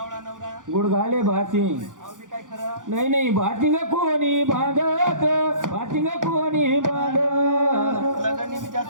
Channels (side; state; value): left; late; 0.88 ms